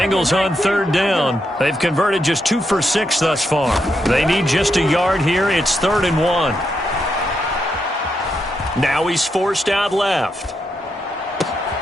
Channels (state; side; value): normal; both; correlation 0.82